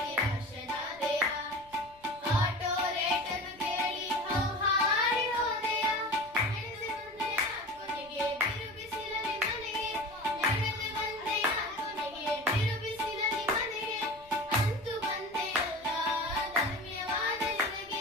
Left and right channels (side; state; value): left; noise; rumble, 28 dB below the sound